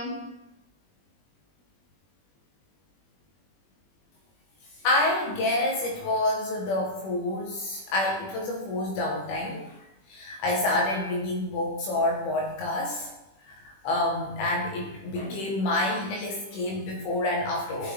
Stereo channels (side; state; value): right; late; 21 ms